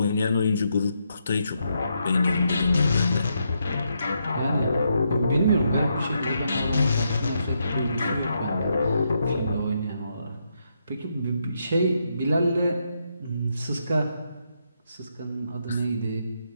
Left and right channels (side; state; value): both; inverted; correlation -0.79